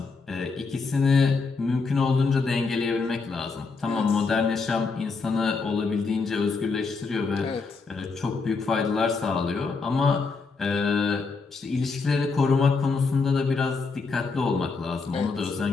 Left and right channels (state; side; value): quieter; right; 4.5 dB